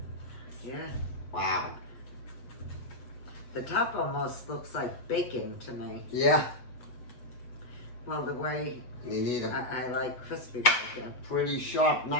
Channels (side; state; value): right; late; 8.1 ms